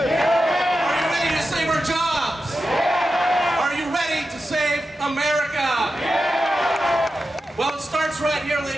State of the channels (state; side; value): normal; both; correlation 0.91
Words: you ready to save our jobs? Yeah. Are you ready to save America? Yeah. Well, it starts right here,